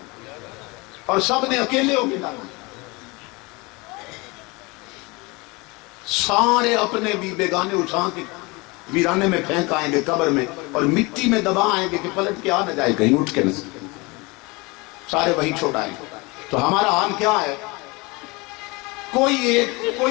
اور سب نے اکیلے ہو کے جانا۔ سارے اپنے بھی بیگانے اٹھا کے ویرانے میں پھینک آئیں گے قبر میں، اور مٹی میں دبا آئیں گے کہ پلٹ کے آ نہ جائے کہیں اٹھ کے نہ، سارے وہی چھوڑائیں گے۔ تو ہمارا حال کیا ہے؟ کوئی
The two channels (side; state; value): right; quieter; 25.6 dB